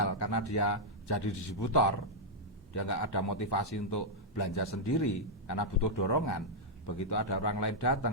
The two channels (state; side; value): normal; both; correlation -0.05